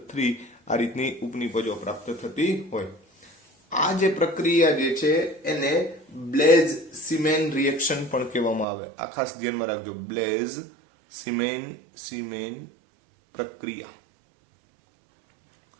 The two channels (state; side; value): drops out; left; at 8.7 s